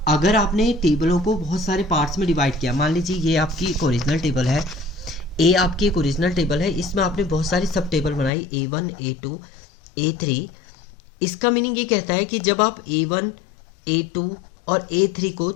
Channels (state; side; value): drops out; right; at 8.3 s